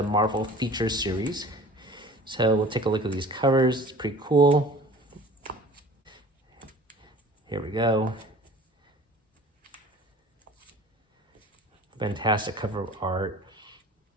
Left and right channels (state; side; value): normal; both; correlation 0.45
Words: Marvel Feature Series. So we'll take a look at these covers. It's pretty cool. Here we go. Fantastic cover art.